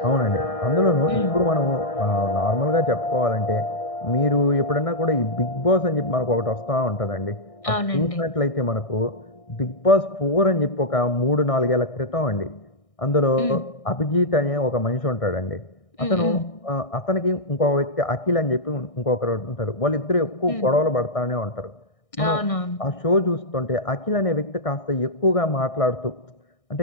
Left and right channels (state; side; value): late; right; 1.6 ms